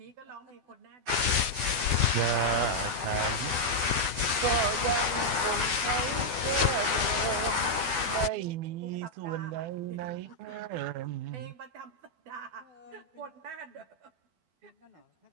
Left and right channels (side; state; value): left; late; 12 ms